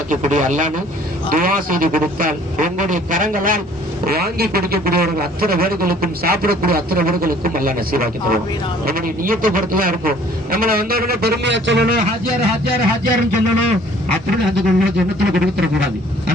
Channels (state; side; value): normal; both; correlation 0.55